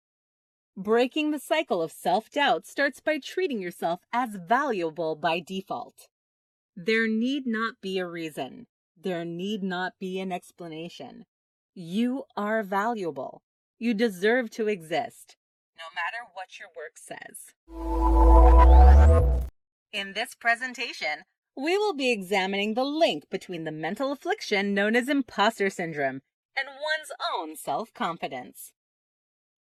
Breaking the cycle of self-doubt starts by treating yourself as valuable by default. There need not be a reason. There need not be an explanation. You are valuable. You deserve to exist, no matter what your work says. In this presentation, we will be examining the link between the mental affliction known as imposter syndrome and one's own self-confidence.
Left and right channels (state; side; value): identical; both; correlation 1.00